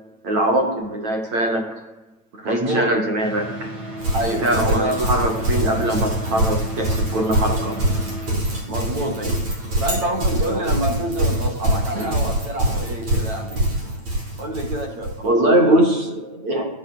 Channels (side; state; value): left; late; 9.0 ms